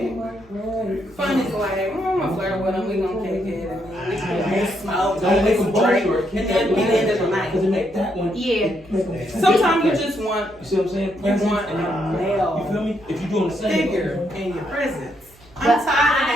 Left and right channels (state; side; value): noise; right; hum, 27 dB below the sound